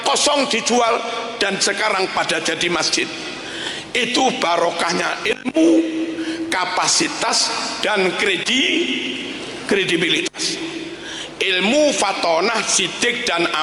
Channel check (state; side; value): identical; both; correlation 1.00